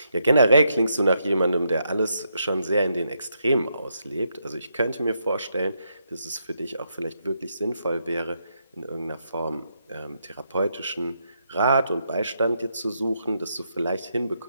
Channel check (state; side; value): inverted; both; correlation -0.79